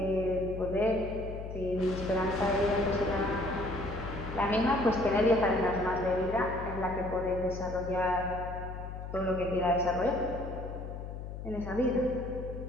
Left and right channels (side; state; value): left; noise; hum, 8 dB below the sound